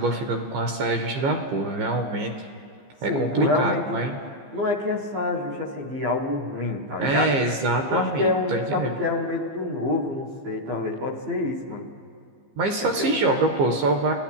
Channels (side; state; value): left; late; 15 ms